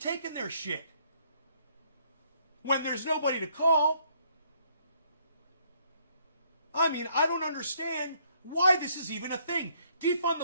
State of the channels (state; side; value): inverted; both; correlation -0.68